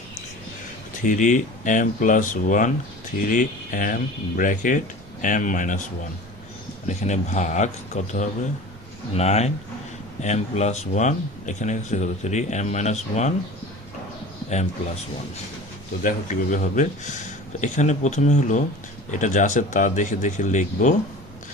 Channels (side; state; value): both; normal; correlation 0.39